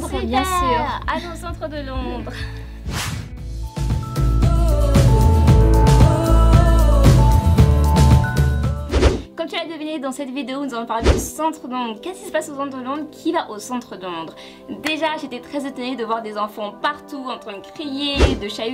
super, bien sûr. Allons au centre de Londres. Comme tu l'as deviné dans cette vidéo, nous allons parler du centre de Londres. Qu'est-ce qui se passe au centre de Londres? Qui va au centre de Londres? Déjà, j'étais très étonnée de voir des enfants partout en train de crier, de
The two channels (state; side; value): identical; both; correlation 1.00